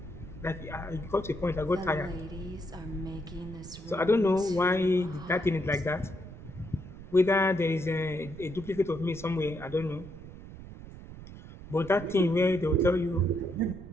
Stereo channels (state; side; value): noise; right; rumble, 14 dB below the sound